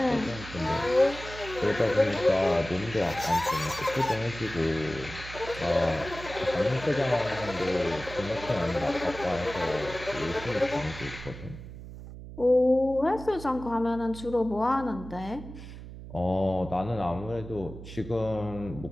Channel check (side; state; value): right; noise; hum, 13 dB below the sound